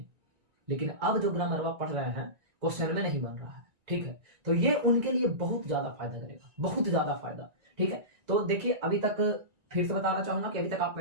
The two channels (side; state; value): left; late; 1.9 ms